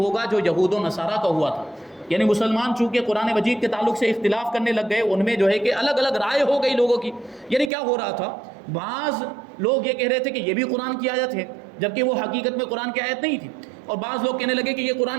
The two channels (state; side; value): drops out; left; at 7.7 s